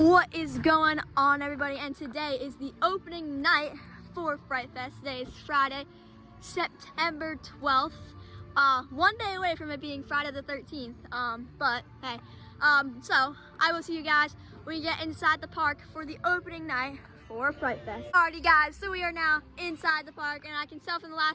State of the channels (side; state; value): both; identical; correlation 1.00